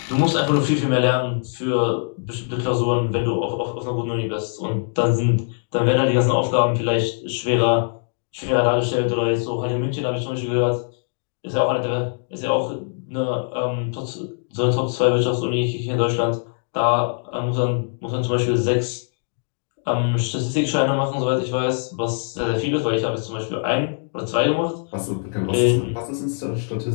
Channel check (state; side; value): silent; right; digital silence